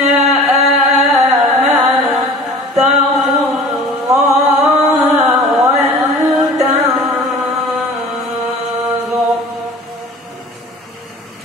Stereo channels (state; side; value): normal; both; correlation 0.43